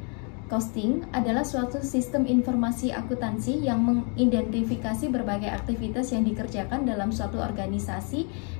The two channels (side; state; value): right; quieter; 37.7 dB